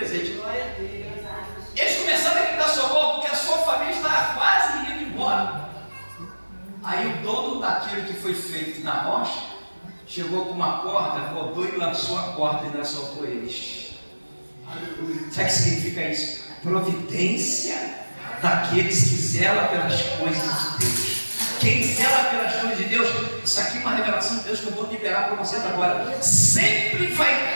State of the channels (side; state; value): both; inverted; correlation -1.00